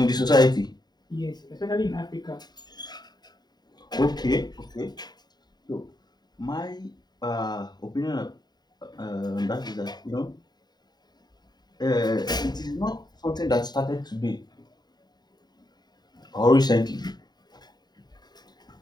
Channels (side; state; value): right; late; 0.20 ms